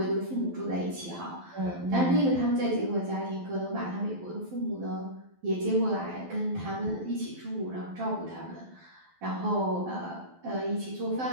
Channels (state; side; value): late; left; 12 ms